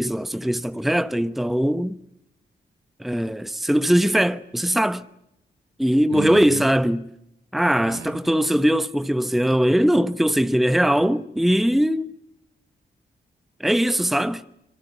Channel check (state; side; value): normal; both; correlation 0.98